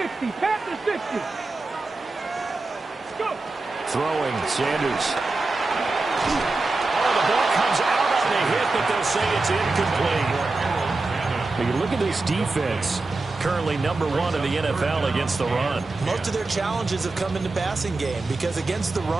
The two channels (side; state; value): left; quieter; 3.4 dB